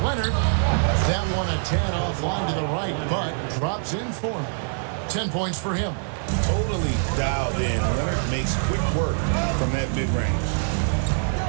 Leonard. That one a tad offline to the right, but drops in for him. 10 points for him. Totally dialed in. Leonard makes quick work from that mid-range.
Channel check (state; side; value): silent; left; digital silence